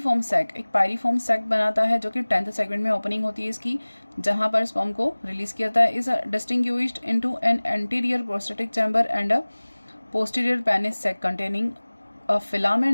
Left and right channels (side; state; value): both; inverted; correlation -1.00